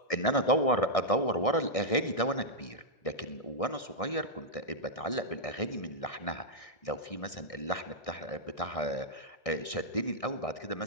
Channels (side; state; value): right; late; 1.6 ms